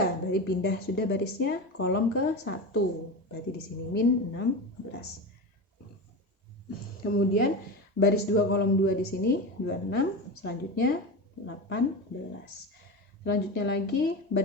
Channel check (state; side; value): normal; both; correlation 0.23